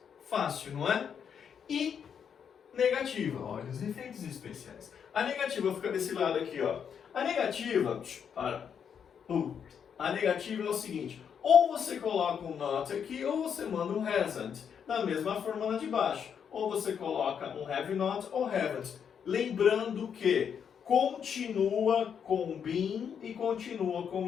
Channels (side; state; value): right; quieter; 7.6 dB